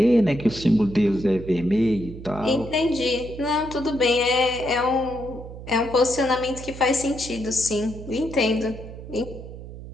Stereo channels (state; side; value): noise; right; hum, 13 dB below the sound